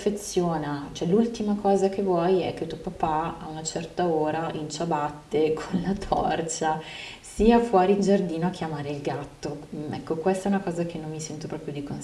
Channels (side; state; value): both; identical; correlation 1.00